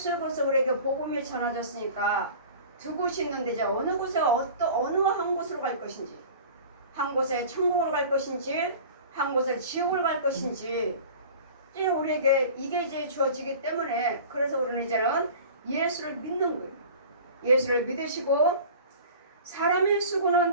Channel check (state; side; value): inverted; both; correlation -0.41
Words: 그리스도 우리에게 복음이 전해졌으니까 두 곳이 있는데 이제 어느 곳에 어느 한 곳으로 갈 것인지, 한 곳에 천국으로 갈 것인지, 한 곳에 지옥을 갈 것인지 이제 우리에게 이게 이제 주어지기 때문에 그래서 우리는 이제는 예수를 믿는 거예요. 예수를 믿으시고 사람의